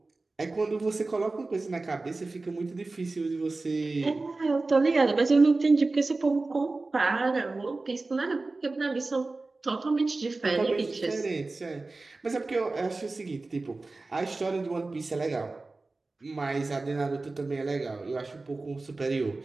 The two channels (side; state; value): left; quieter; 3.4 dB